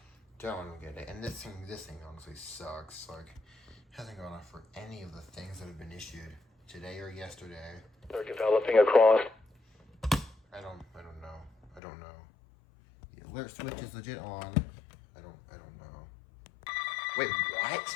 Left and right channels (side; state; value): right; drops out; at 11.8 s